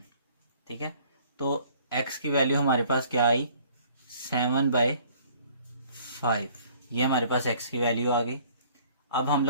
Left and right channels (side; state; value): both; inverted; correlation -0.56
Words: ठीक है, तो x की वैल्यू हमारे पास क्या आई 7/5। ये हमारे पास x की वैल्यू आ गई। अब हम